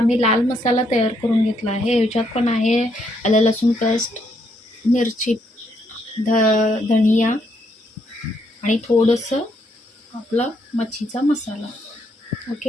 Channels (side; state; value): both; normal; correlation 0.74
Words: मी लाल मसाला तयार करून घेतला आहे. ह्याच्यात पण आहे आलं लसूण पेस्ट, मिरची, धनिया आणि थोडंसं आपला मच्छीचा मसाला.